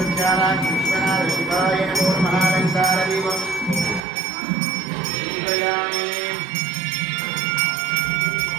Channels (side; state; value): left; drops out; at 4.0 s